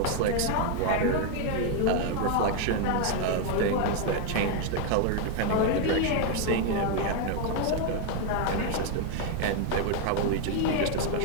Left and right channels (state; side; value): different; both; correlation 0.01